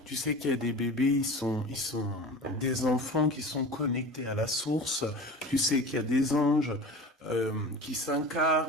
Tu sais qu'il y a des bébés, ils sont des enfants qui sont connectés à la source. Tu sais qu'il y a des anges qui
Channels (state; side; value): normal; both; correlation 0.35